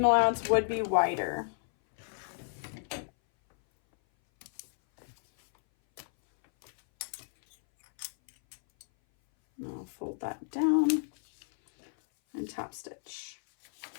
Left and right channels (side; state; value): right; silent; 57 dB below the other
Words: allowance would be wider. I'll fold that down and top stitch.